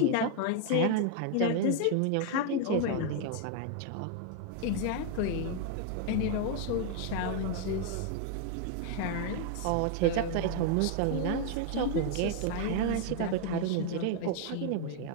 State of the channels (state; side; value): different; both; correlation 0.00